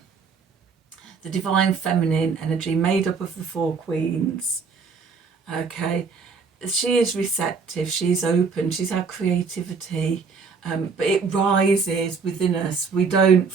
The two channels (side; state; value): left; quieter; 5.3 dB